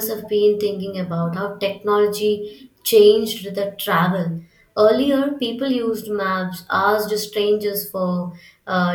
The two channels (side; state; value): both; identical; correlation 1.00